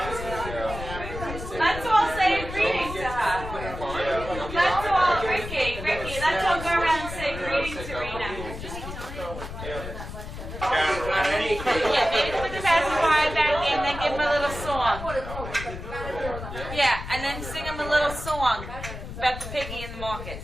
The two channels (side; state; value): left; noise; rumble, 9 dB below the sound